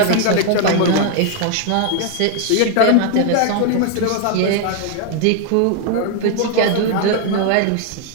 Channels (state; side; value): different; both; correlation 0.00